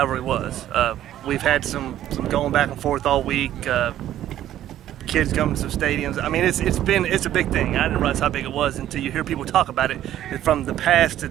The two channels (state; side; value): quieter; left; 12.2 dB